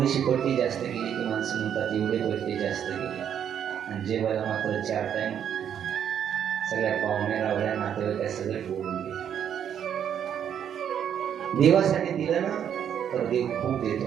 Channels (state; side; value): quieter; left; 9.0 dB